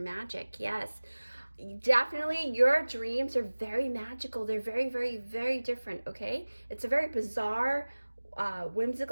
yes. Definitely, your dreams are very magical. They're very, very, very different, okay? It's a very bizarre,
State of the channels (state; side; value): inverted; both; correlation -1.00